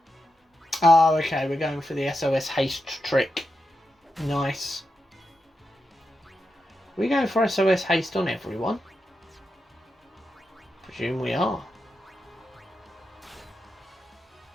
Oh, okay, we're going for the SOS haste trick. Nice. Are we going for SOS haste on everyone? Presume we are.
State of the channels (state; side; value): normal; both; correlation 0.88